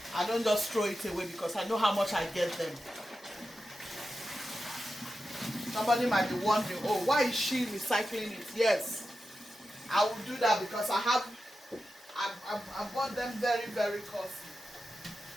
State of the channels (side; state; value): both; normal; correlation 0.91